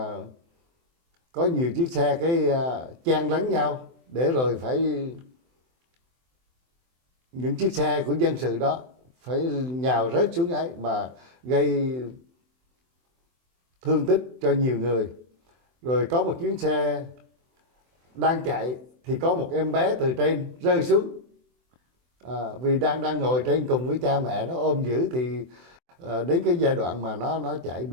có nhiều chiếc xe chen lấn nhau, để rồi phải những chiếc xe của dân sự đó phải nhào rớt xuống ấy mà gây thương tích cho nhiều người. Rồi có một chuyến xe đang chạy thì có một em bé từ trên rơi xuống, vì đang ngồi trên cùng với cha mẹ nó ôm giữ. Thì đến cái giai đoạn mà nó chạy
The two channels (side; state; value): left; late; 24 ms